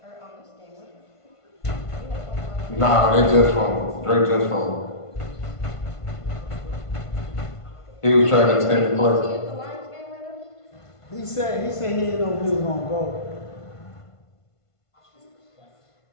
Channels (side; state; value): right; late; 1.5 ms